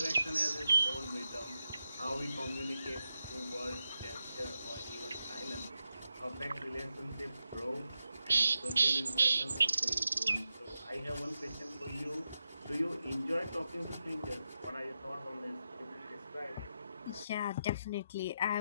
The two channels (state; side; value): inverted; both; correlation -0.88